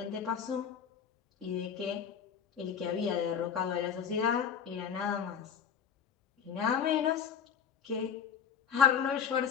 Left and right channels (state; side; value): quieter; right; 7.7 dB